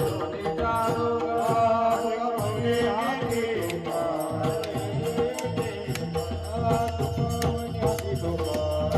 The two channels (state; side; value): identical; both; correlation 1.00